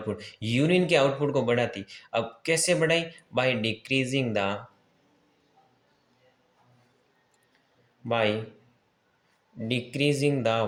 यूरिन के आउटपुट को बढ़ाती। अब कैसे बढ़ाई, by decreasing the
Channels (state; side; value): identical; both; correlation 1.00